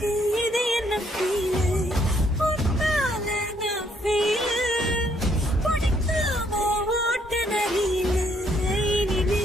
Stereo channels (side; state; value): both; normal; correlation 0.69